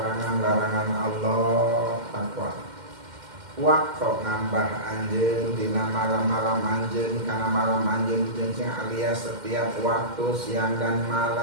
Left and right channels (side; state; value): left; late; 2.1 ms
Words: Allah takwa waktu ngambah anjeun dina malam-malam anjeun kana malam anjeun jeung alias setiap waktu siang dan